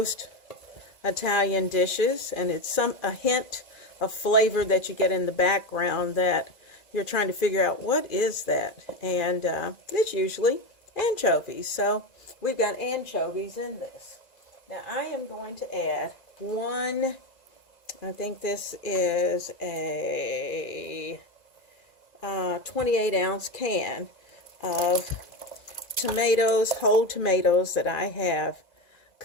Italian dishes, and it's a hint of flavor that you get in the background that you're trying to figure out what is that, and it's usually anchovies. So we've got anchovies in this. Now I am going to add one, I think this is a 28-ounce can of tomatoes, whole tomatoes that I have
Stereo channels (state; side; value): late; right; 1.9 ms